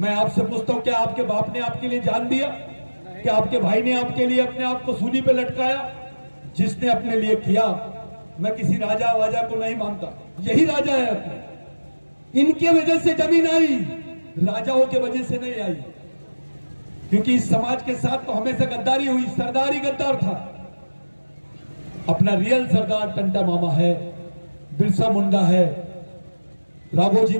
आपसे पूछता हूं, क्या आपके बाप ने आपके लिए जान दिया? क्या आपके भाई ने आपके लिए अपने आप को सूली पे लटकाया? जिसने अपने लिए किया, मैं किसी राजा वाजा को नहीं मानता, यही राजा है अपने। इनके वजह से जमीन आई, राजाओं के वजह से नहीं आई। क्योंकि इस समाज के साथ तो हमेशा गद्दारी हुई, सरदार ही गद्दार था। अपना रियल सरदार टंटा मामा है, बिरसा मुंडा है, राघोजी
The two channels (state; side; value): inverted; both; correlation -1.00